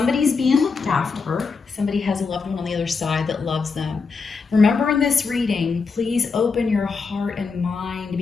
being looked after. Somebody has a loved one on the other side that loves them. Remember, in this reading, please open your heart and mind to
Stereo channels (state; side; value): quieter; right; 4.8 dB